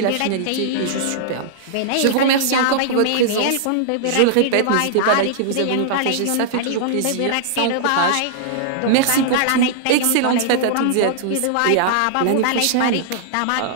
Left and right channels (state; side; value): different; both; correlation -0.01